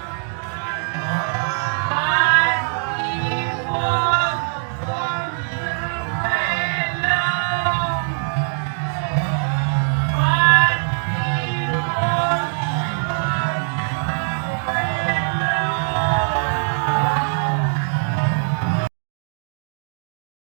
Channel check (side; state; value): left; silent; digital silence